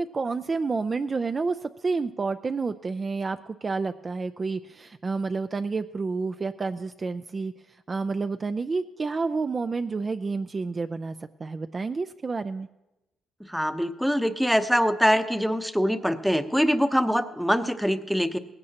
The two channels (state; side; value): normal; both; correlation 0.96